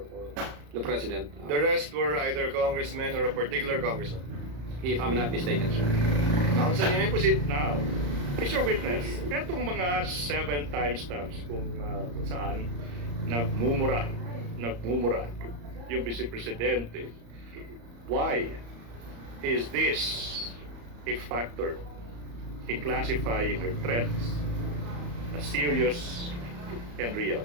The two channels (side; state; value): left; late; 34 ms